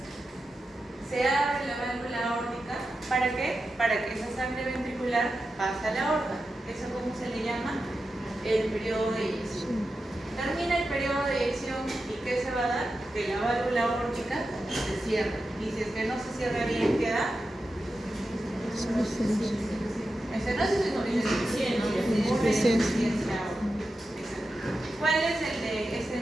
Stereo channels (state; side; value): normal; both; correlation 0.91